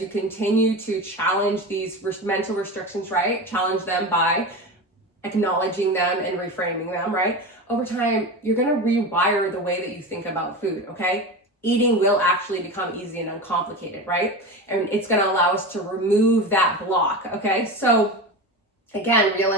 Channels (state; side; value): normal; both; correlation 0.25